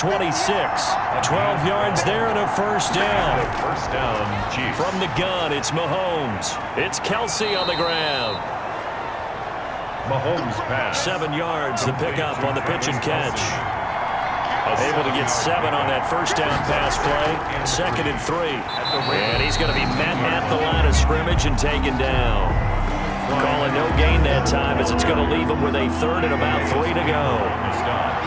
12 yards there and a 1st down. 1st down, Chiefs. From the gun, it's Mahomes. It's Kelsey on the ground. Mahomes pass. 7 yards, the pickup on the pitch and catch. Able to get 7 on that 1st down pass play. 2nd and 3. And he's going to be met at the line of scrimmage and taken down. Calling no gain that time as it's going to leave him with a 3rd and about 3 to go.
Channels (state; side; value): identical; both; correlation 1.00